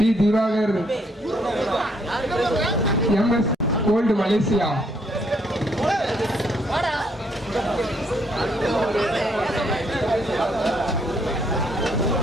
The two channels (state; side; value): normal; both; correlation 0.70